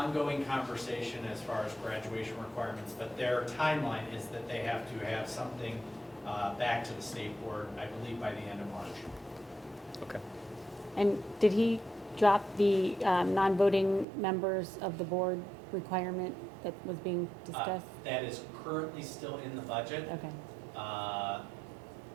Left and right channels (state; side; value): drops out; left; at 14.1 s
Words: conversation as far as graduation requirements, but their timeline is that they have to have something back to the state board, I believe, by the end of March. Okay. And did he drop the non-voting members of the board requirement that was being discussed? That is currently still in the budget. Okay.